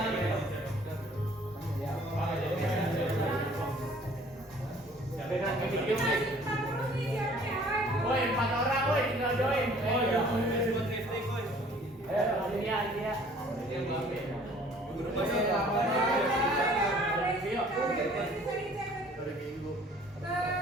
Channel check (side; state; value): both; normal; correlation 0.54